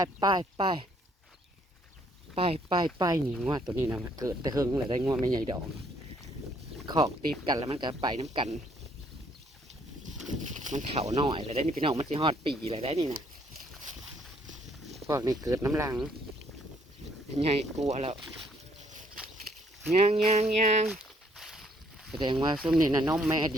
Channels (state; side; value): normal; both; correlation 0.66